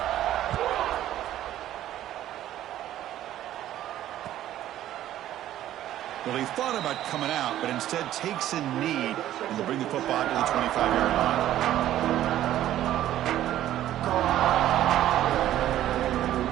Well, he thought about coming out, but instead takes a knee and will bring the football to the 25-yard line.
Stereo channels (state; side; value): quieter; left; 12.8 dB